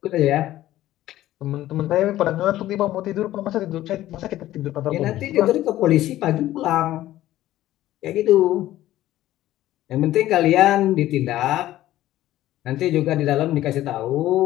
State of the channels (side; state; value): right; quieter; 14.5 dB